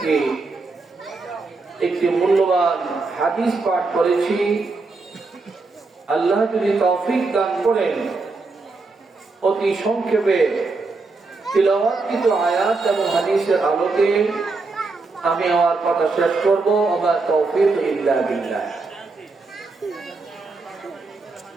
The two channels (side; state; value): left; quieter; 3.8 dB